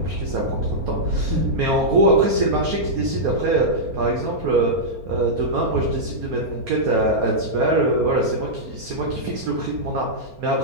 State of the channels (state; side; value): late; left; 4.3 ms